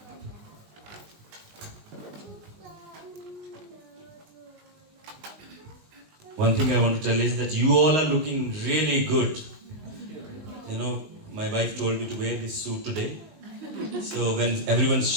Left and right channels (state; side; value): late; left; 19 ms